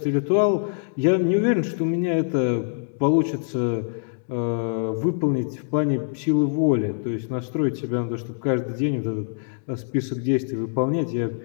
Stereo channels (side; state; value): right; silent; digital silence